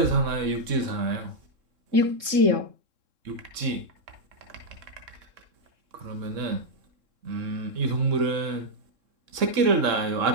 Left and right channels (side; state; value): left; late; 3.7 ms